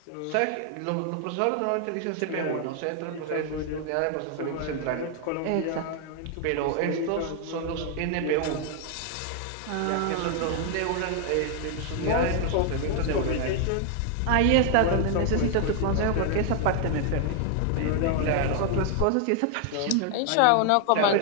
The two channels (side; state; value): both; different; correlation 0.00